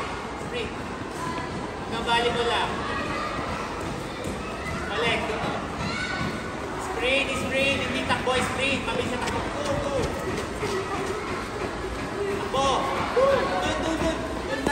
Sprint. Hanggang volleyball lang. Balik. Sprint, sprint. Hindi takbo, sprint. Mabilis na takbo. Takbo. Doon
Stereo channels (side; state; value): both; identical; correlation 1.00